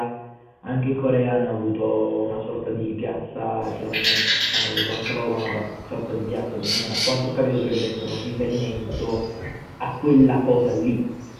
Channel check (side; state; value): both; identical; correlation 1.00